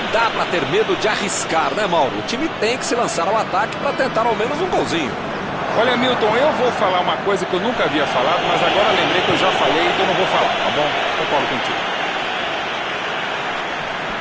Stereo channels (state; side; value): identical; both; correlation 1.00